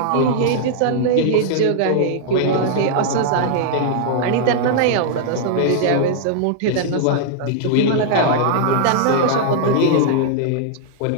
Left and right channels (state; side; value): different; both; correlation -0.01